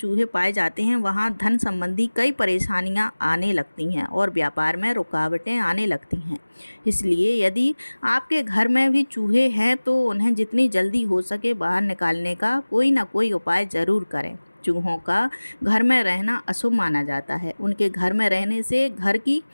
पाए जाते हैं वहाँ धन संबंधी कई परेशानियाँ आने लगती हैं और व्यापार में रुकावटें आने लगती हैं। इसलिए यदि आपके घर में भी चूहे हैं तो उन्हें जितनी जल्दी हो सके बाहर निकालने का कोई ना कोई उपाय ज़रूर करें। चूहों का घर में रहना अशुभ माना जाता है। उनके घर में रहने से घर की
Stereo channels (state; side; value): inverted; both; correlation -1.00